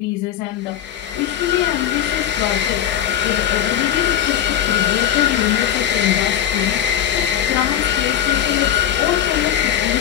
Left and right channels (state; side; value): quieter; right; 10.4 dB